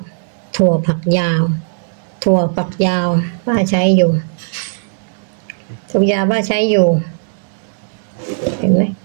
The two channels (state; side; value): silent; left; digital silence